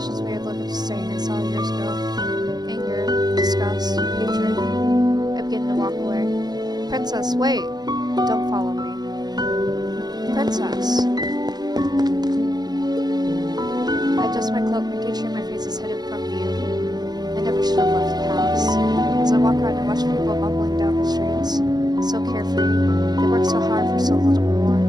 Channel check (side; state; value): left; late; 0.20 ms